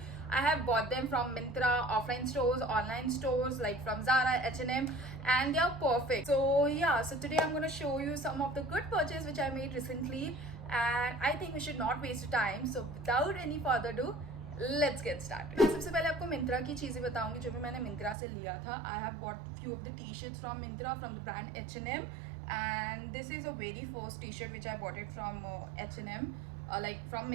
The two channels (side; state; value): left; drops out; at 18.2 s